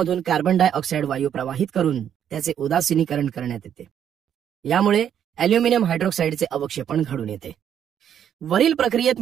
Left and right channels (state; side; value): quieter; left; 9.3 dB